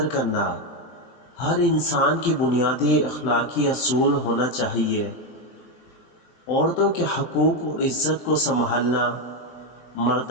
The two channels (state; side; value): late; right; 23 ms